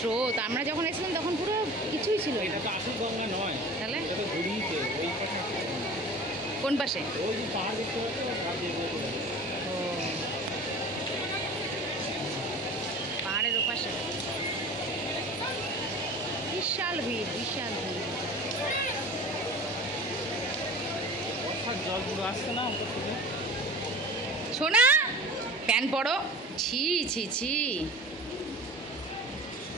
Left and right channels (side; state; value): both; normal; correlation 0.39